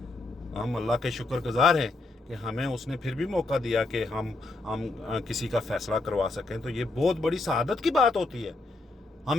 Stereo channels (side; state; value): right; quieter; 3.2 dB